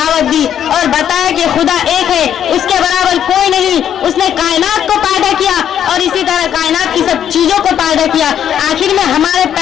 दी और बताया कि खुदा एक है, उसके बराबर कोई नहीं। उसने कायनात को पैदा किया और इसी तरह कायनात की सब चीजों को पैदा किया। आखिर में हमारे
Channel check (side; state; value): right; quieter; 9.6 dB